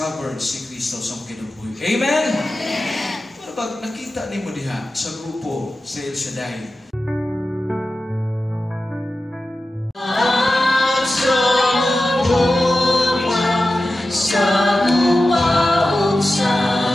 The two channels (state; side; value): normal; both; correlation 0.93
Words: si Kristo sa kinabuhi. Amen? Amen! Pero pag nakita ni mo diha sa grupo sa El Shaddai, Amen.